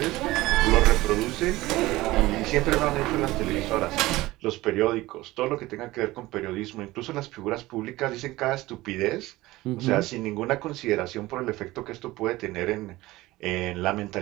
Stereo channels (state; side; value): quieter; left; 18.5 dB